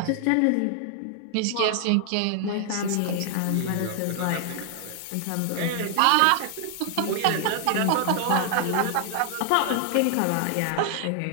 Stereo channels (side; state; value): both; different; correlation 0.00